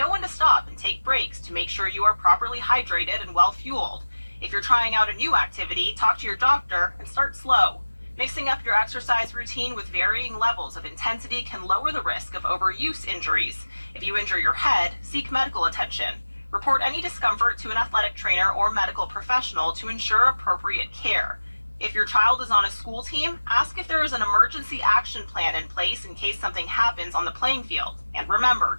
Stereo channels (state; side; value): inverted; both; correlation -1.00